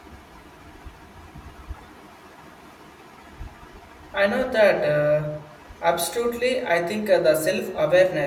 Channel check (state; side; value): identical; both; correlation 1.00